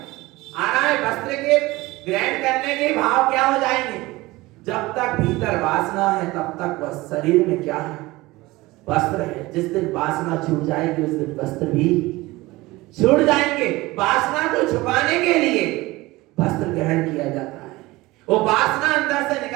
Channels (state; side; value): quieter; left; 20.2 dB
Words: आ रहा है वस्त्र के ग्रहण करने के भाव क्या हो जाएंगे, जब तक भीतर वासना है तब तक वह शरीर में क्या है, वस्त्र है। जिस दिन वासना छूट जाएगी उस दिन वस्त्र भी छूट जाएंगे। वासना को छुपाने के लिए वस्त्र ग्रहण किया जाता है। वो वासना अंदर से